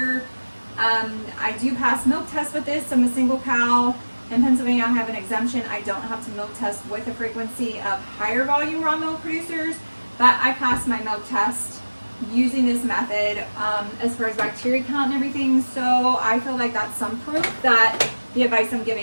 I do pass milk tests with this. I'm a single cow. In Pennsylvania, I have an exemption. I don't have to milk test with the frequency of higher volume raw milk producers, but I pass my milk test using this method as far as bacteria count and everything. So I feel like that's some proof that the advice I'm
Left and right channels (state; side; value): inverted; both; correlation -1.00